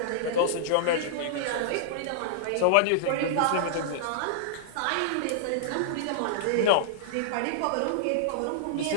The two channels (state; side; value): different; both; correlation -0.01